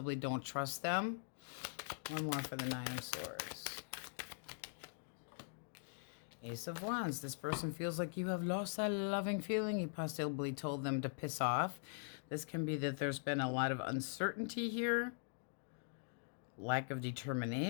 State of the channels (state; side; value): silent; right; digital silence